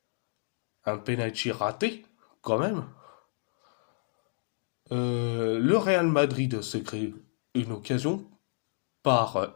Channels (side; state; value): right; silent; 58 dB below the other